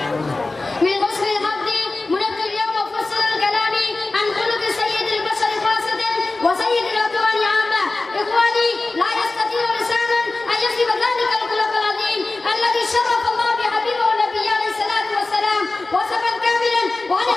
من حسن الحظ منذ اليوم أفصل الكلام عن خلق سيد البشر خاصة وسيد الأكوان عامة. إخواني، لا يستطيع لسانا أن يصف ذلك الخلق العظيم الذي شرف الله بحبيبه النبي عليه الصلاة والسلام وصفا كاملا، وأنا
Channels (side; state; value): right; quieter; 3.3 dB